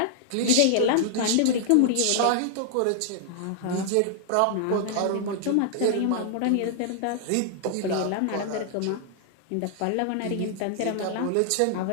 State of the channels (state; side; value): different; both; correlation 0.00